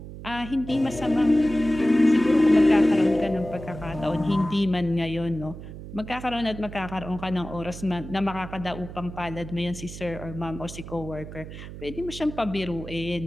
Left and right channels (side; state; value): right; noise; hum, 12 dB below the sound